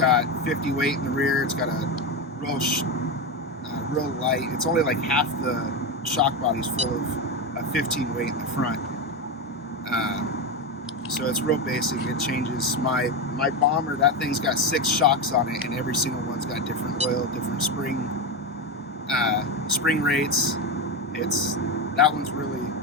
50 weight in the rear. It's got a real light. It's only like half the shock body's full of a 15 weight in the front. So it's real basic. It changes. My bomber, that thing's got 6 shocks on it, and every single one's got different oil, different spring rates. that one's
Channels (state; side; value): normal; both; correlation 0.14